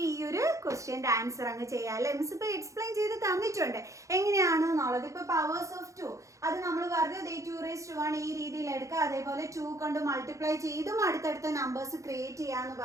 ഈ ഒരു ക്വസ്റ്റ്യൻ്റെ ആൻസർ അങ്ങ് ചെയ്യാം അല്ലേ. മിസ് ഇപ്പോൾ എക്സ്പ്ലെയിൻ ചെയ്ത് തന്നിട്ടുണ്ട് എങ്ങനെയാണെന്നുള്ളത്. ഇപ്പോൾ പവേഴ്സ് ഓഫ് 2 അത് നമ്മൾ പറഞ്ഞു 2 raised to 1 ഈ രീതിയിൽ എടുക്കുക. അതേപോലെ 2 കൊണ്ട് മൾട്ടിപ്ലൈ ചെയ്തും അടുത്തടുത്ത നമ്പേഴ്സ് ക്രിയേറ്റ് ചെയ്യാമെന്ന്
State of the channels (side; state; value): left; late; 0.15 ms